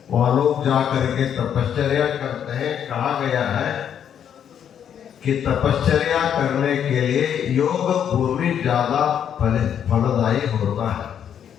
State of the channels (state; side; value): quieter; right; 8.9 dB